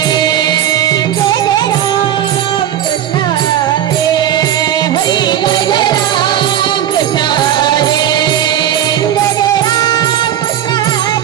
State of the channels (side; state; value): left; quieter; 10.7 dB